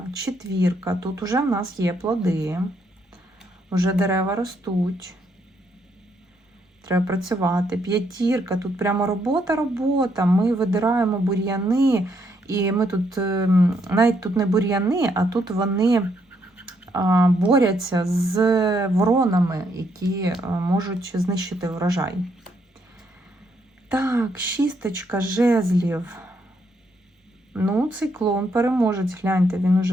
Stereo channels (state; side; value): normal; both; correlation 0.74